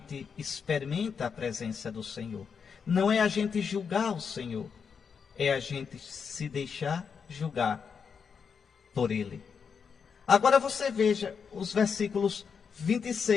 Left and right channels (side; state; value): right; quieter; 6.3 dB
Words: experimenta a presença do Senhor. Não é a gente julgar o Senhor, é a gente se deixar julgar por Ele. Agora você veja os versículos